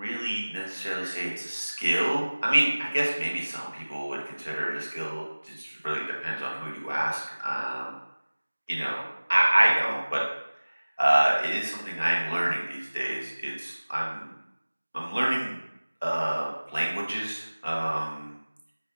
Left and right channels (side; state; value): both; inverted; correlation -1.00